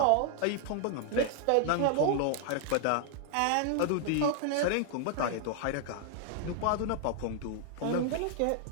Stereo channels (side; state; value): both; different; correlation 0.00